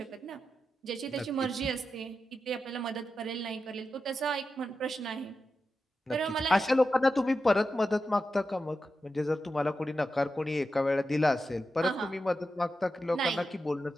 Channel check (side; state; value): both; normal; correlation 0.90